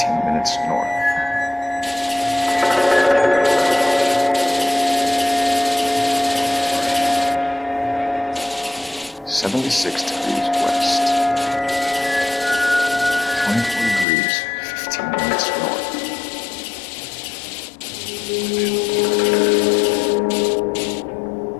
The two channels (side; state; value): right; drops out; at 14.1 s